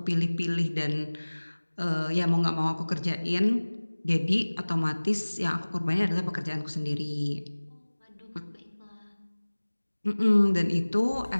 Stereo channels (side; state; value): both; inverted; correlation -1.00